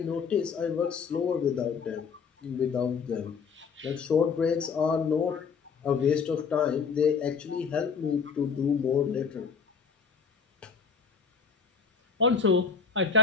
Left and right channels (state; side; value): quieter; right; 5.8 dB